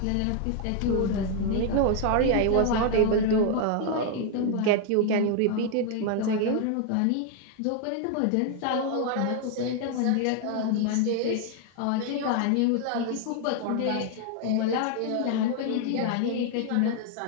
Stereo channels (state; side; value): different; both; correlation 0.00